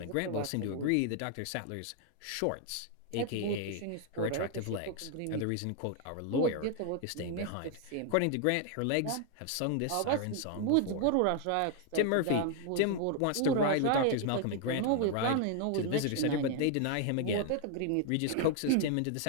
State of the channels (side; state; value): both; different; correlation 0.00